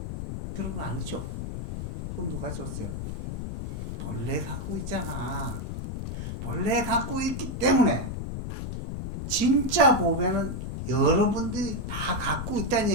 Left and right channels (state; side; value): noise; left; rumble, 5 dB below the sound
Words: 그런 거 아니죠? 그럼 누가 줬어요? 본래 갖고 있잖아. 본래 갖고 있기 때문에 진짜 보배는 여러분들이 다 갖고 있다는